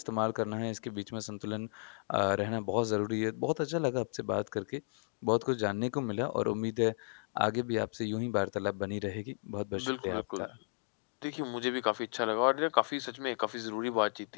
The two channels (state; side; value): quieter; right; 37.1 dB